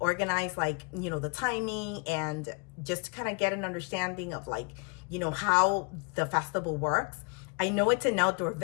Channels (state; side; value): quieter; right; 31.0 dB